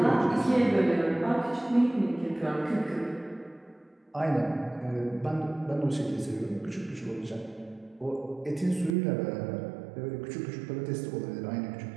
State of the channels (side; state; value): left; drops out; at 9.0 s